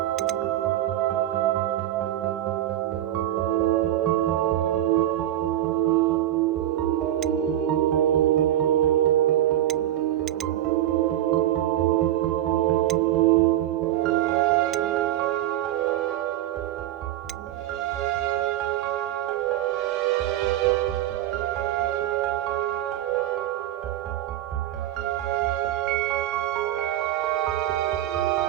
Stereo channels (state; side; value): quieter; left; 13.0 dB